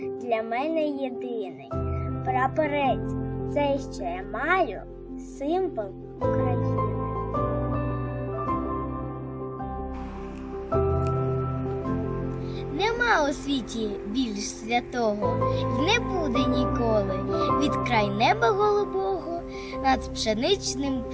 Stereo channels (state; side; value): identical; both; correlation 1.00